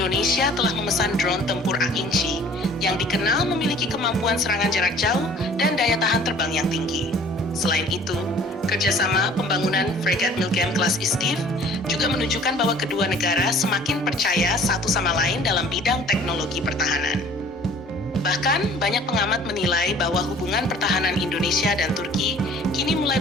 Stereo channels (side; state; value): both; normal; correlation 0.51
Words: telah memesan drone tempur Akinci yang dikenal memiliki kemampuan serangan jarak jauh dan daya tahan terbang yang tinggi. Selain itu, kerjasama pembangunan fregat Milgem kelas Istif juga menunjukkan bahwa kedua negara semakin percaya satu sama lain dalam bidang teknologi pertahanan. Bahkan, banyak pengamat menilai bahwa hubungan pertahanan Indonesia dan Turki kini mulai